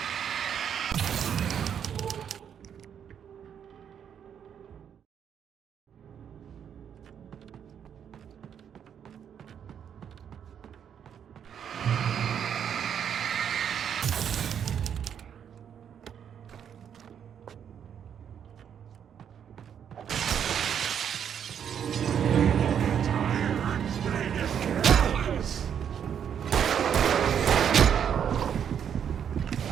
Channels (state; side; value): quieter; left; 8.4 dB